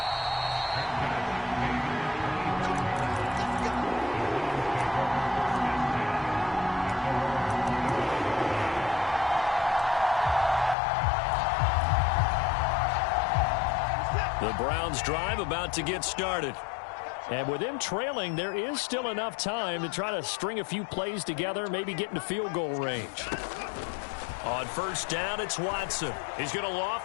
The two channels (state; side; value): drops out; right; at 10.8 s